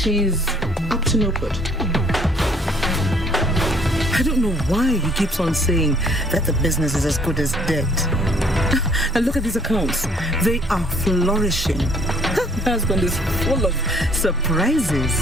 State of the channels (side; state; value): both; normal; correlation 0.61